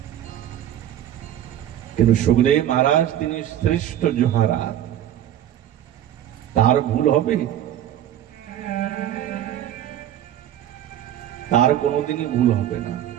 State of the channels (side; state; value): left; quieter; 11.4 dB